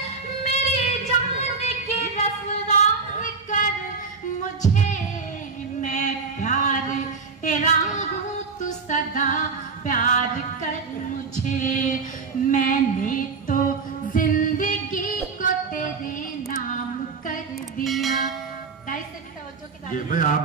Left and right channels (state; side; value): quieter; left; 4.7 dB